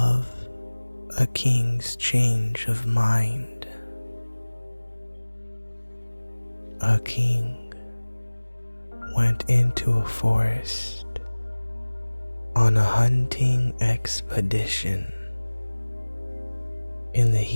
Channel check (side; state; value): both; inverted; correlation -1.00